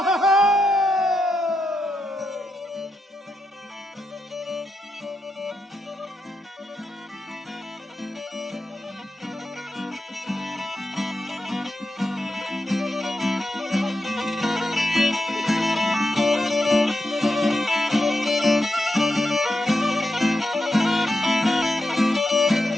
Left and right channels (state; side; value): normal; both; correlation 0.86